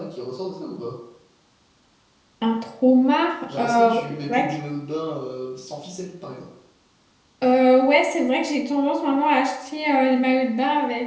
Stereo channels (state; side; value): identical; both; correlation 1.00